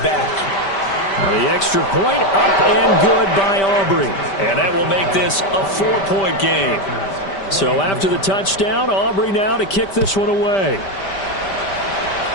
back. Now the extra point up and good by Aubrey. And that will make this a 4-point game. So after the touchdown, Aubrey now to kick this one away.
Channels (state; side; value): late; right; 5.1 ms